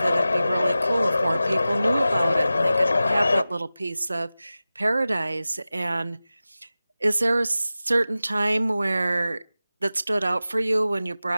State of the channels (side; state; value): both; inverted; correlation -0.95